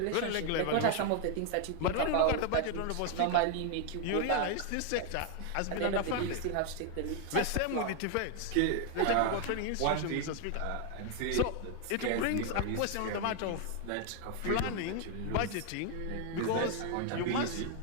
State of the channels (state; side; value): different; both; correlation 0.00